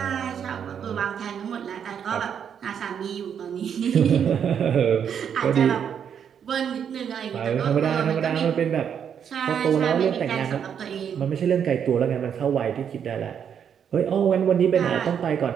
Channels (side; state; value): left; quieter; 8.1 dB